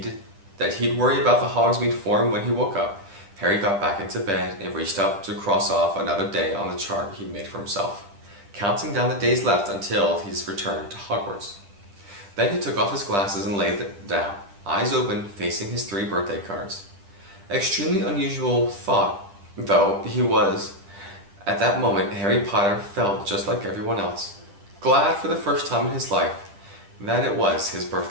worry about the Hogsmeade form when he woke up, Harry got back into bed and reached up to cross off another day on the chart he made for himself, counting down the days left until his return to Hogwarts. Then he took off his glasses and laid them down, eyes open, facing his 3 birthday cards. Extremely unusual thought, though he was. At that moment, Harry Potter felt just like everyone else, glad for the first time in his life that it was his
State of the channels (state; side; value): late; left; 10 ms